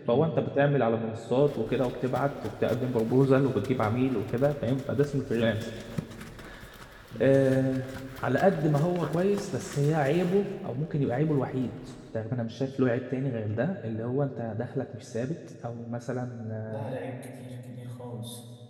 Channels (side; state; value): both; identical; correlation 1.00